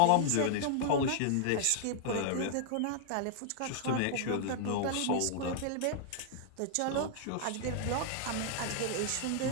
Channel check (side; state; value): both; different; correlation -0.01